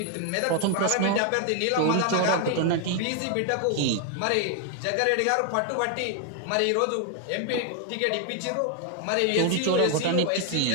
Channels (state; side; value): different; both; correlation 0.00